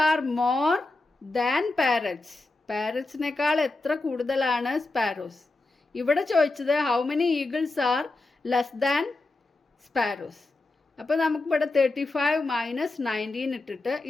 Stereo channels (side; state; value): right; quieter; 3.1 dB